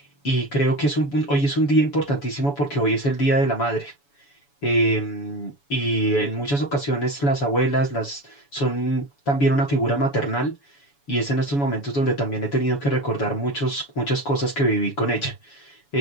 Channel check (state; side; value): late; right; 7.0 ms